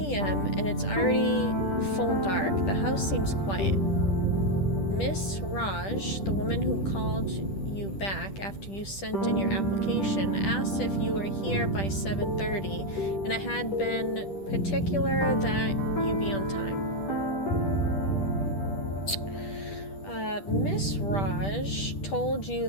and it's already full dark. The house seems quiet. Miss Raj, the woman who called you back after you sent in your application, asked if you were here by 7:30, and I had been particular that you be on time. Miss Raj told you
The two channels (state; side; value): late; right; 10 ms